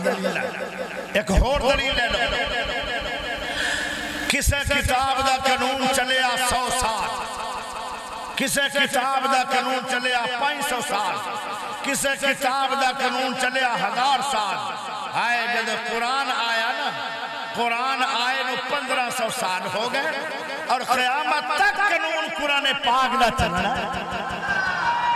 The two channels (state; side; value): identical; both; correlation 1.00